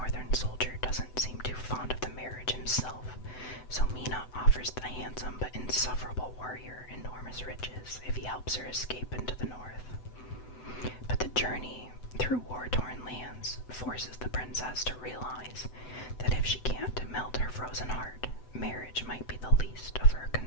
soldier doesn't seem too fond of the marriage himself, so Mina offers the handsome but insufferable warrior enormous riches if he helps her escape into the north. But the journey through war-torn lands forces the princess to realize that if she can't melt her frozen heart, marriage might be the least of her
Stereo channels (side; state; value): right; late; 7.9 ms